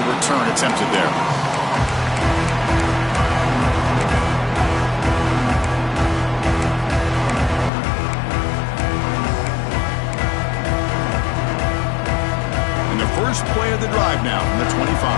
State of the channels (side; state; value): right; drops out; at 7.7 s